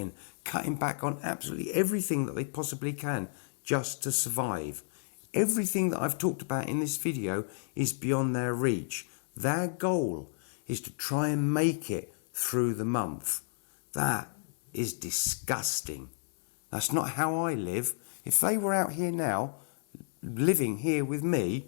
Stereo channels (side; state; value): right; silent; digital silence